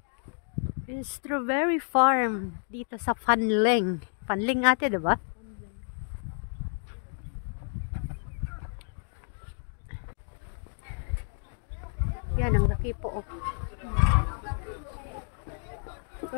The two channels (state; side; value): silent; right; 58 dB below the other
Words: Strawberry farm dito sa Fanling. Fanling ate, diba? Yan, ang laki po. Oh.